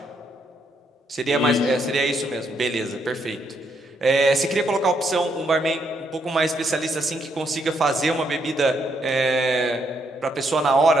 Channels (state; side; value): normal; both; correlation 0.75